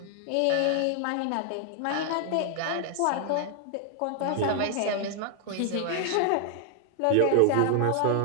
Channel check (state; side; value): different; both; correlation 0.00